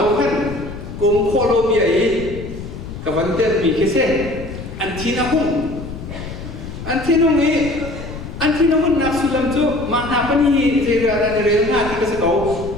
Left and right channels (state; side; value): noise; left; rumble, 10 dB below the sound